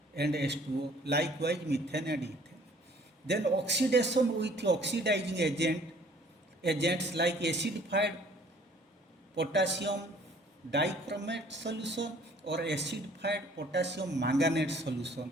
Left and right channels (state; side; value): normal; both; correlation 0.56